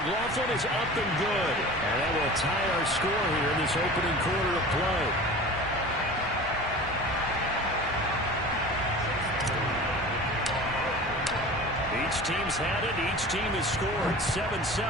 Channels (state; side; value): normal; both; correlation 0.37